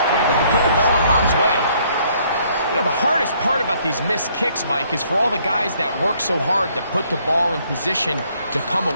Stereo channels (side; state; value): both; inverted; correlation -0.66